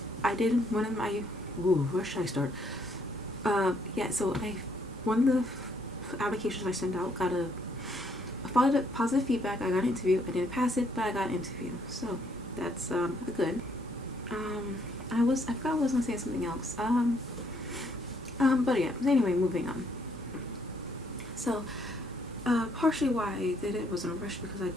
did one of my, where should I start? Yeah, so one of the applications I sent out got I followed up positive feedback. I got an interview. I didn't pass it, but I got an interview, so that's good. I forgot I was gonna say something else. But yeah, anyway, moving on. So, partially why I did it was in a rush because I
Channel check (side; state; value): both; normal; correlation 0.70